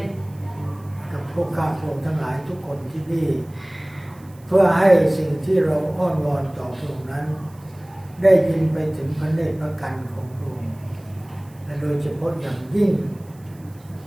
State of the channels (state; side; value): noise; right; hiss, 28 dB below the sound